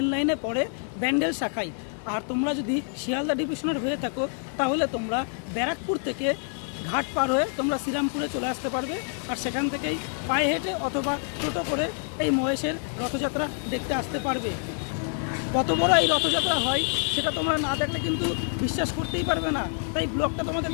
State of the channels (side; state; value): right; silent; 56 dB below the other